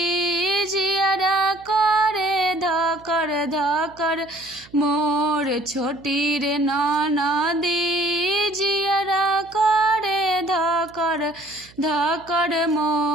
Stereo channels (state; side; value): noise; right; hum, 26 dB below the sound